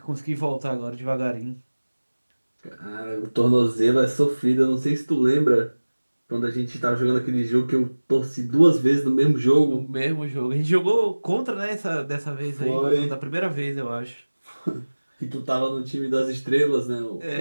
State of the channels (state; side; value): inverted; both; correlation -1.00